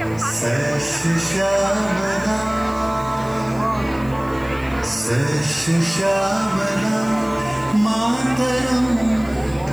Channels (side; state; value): left; noise; hiss, 25 dB below the sound